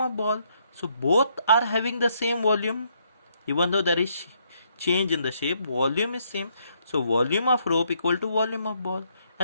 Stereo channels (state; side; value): inverted; both; correlation -0.72